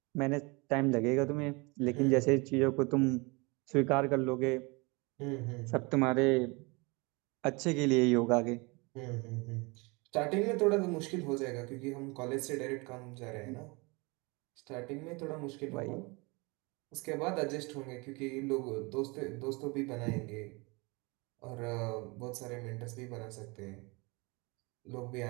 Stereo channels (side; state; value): left; quieter; 27.4 dB